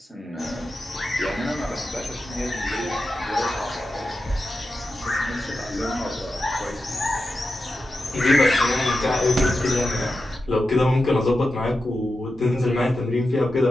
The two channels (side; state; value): both; normal; correlation 0.91